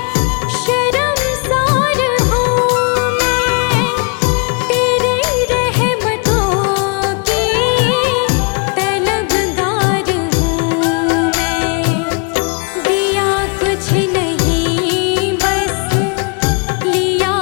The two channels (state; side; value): quieter; right; 35.1 dB